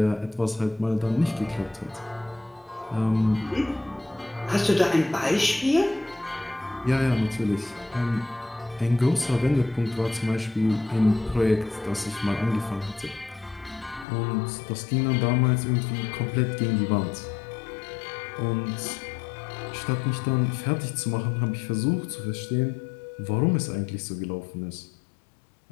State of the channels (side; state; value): right; drops out; at 14.1 s